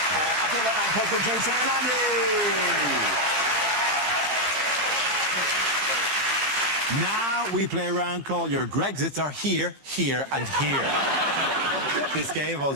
Now we play a round called Your Grexits Are Here, Here and Here. This game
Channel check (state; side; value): late; left; 15 ms